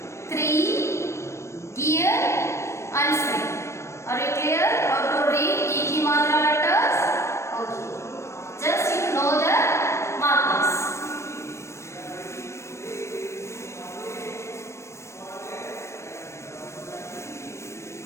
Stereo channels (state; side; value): late; right; 0.13 ms